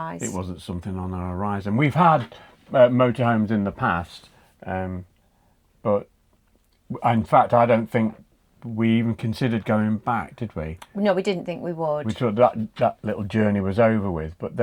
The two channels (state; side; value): identical; both; correlation 1.00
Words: it wasn't something on our horizon. We've had motorhomes in the past, but in fact, I don't think we even considered going back, did we? No, we didn't think we would. We thought that little journey was over with, but